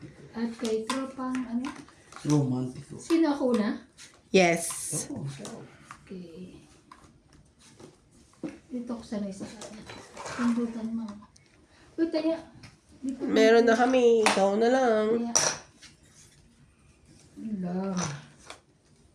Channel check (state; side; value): identical; both; correlation 1.00